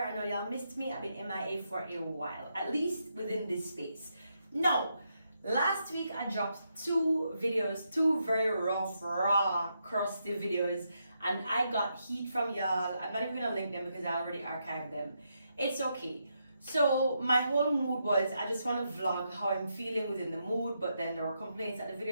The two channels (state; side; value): inverted; both; correlation -0.81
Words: I know y'all missed me. I've been MIA for a while, at least within this space. No, last week I dropped two videos, two very rough, raw, crusty videos, and I got heat from y'all. I'm not even gonna link them because I already archived them. It's okay. So my whole mood was I just want to vlog how I'm feeling within the mood, but then there were complaints that the